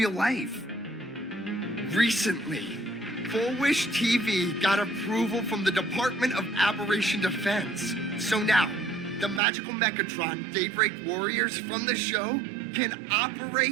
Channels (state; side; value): drops out; left; at 9.4 s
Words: life. Recently, Full Wish TV got approval from the Department of Aberration Defense. So now, the magical Mechatron Daybreak Warriors from the show can